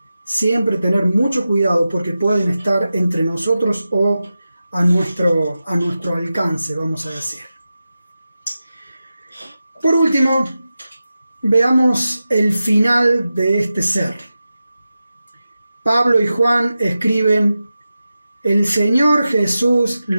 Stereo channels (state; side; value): inverted; both; correlation -0.93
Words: siempre tener mucho cuidado porque pueden estar entre nosotros o a nuestro alcance, vamos a decir. Por último, veamos el final de este ser. Pablo y Juan escriben: el Señor Jesús